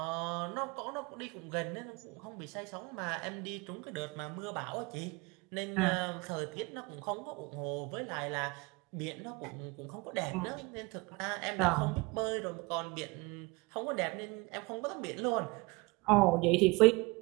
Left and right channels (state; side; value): quieter; left; 25.5 dB